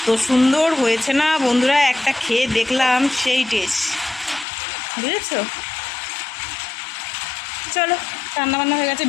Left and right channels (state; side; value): drops out; right; at 4.5 s